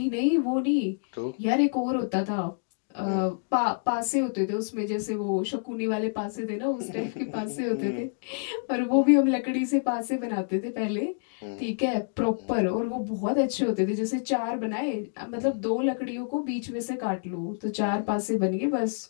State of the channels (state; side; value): silent; right; digital silence